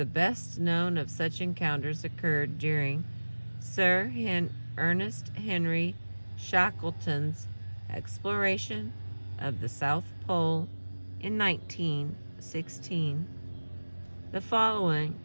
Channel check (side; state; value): both; inverted; correlation -1.00